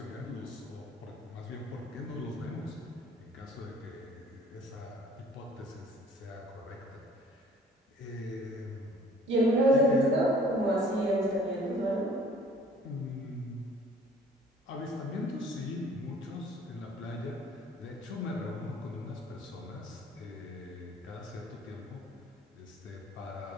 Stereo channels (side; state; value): both; normal; correlation 0.54